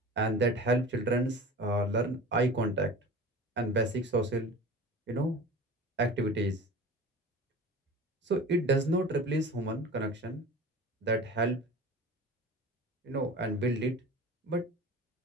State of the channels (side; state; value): both; normal; correlation 0.37